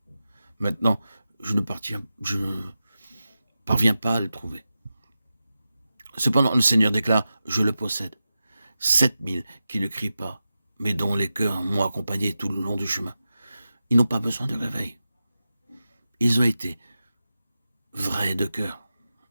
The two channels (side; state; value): both; inverted; correlation -0.93